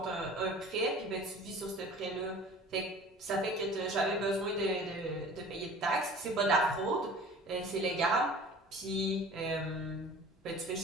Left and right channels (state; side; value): normal; both; correlation 0.44